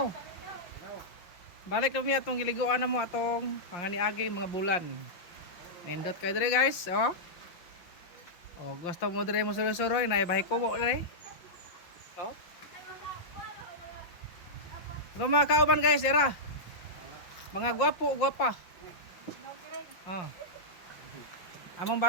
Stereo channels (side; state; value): right; late; 5.7 ms